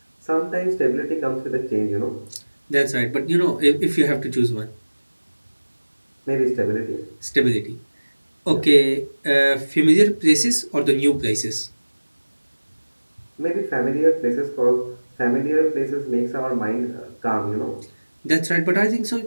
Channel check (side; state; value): both; inverted; correlation -1.00